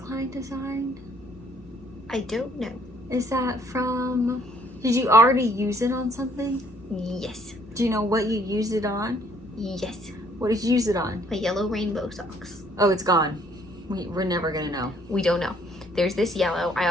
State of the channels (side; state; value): both; normal; correlation 0.63